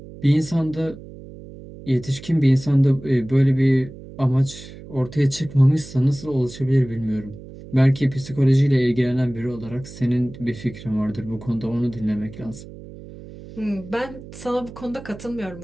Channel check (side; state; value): right; noise; hum, 16 dB below the sound